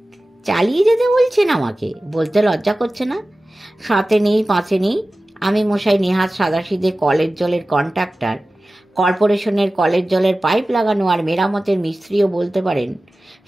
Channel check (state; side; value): normal; both; correlation 0.96